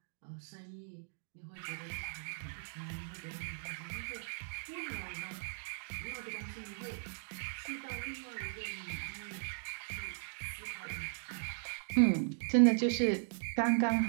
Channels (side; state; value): left; silent; digital silence